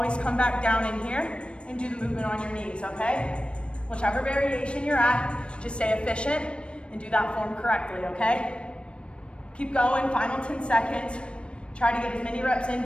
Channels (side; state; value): right; late; 0.058 ms